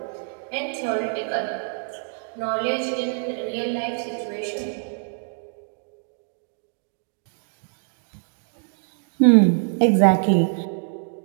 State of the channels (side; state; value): left; silent; digital silence